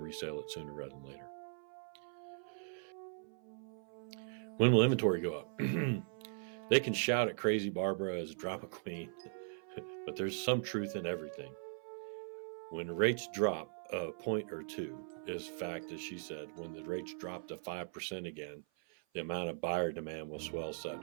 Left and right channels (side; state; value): left; silent; 51 dB below the other